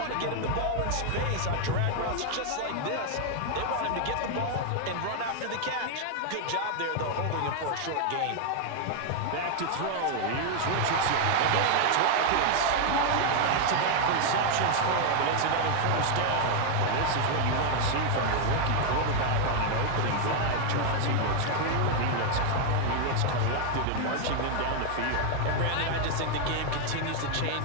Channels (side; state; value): both; different; correlation 0.00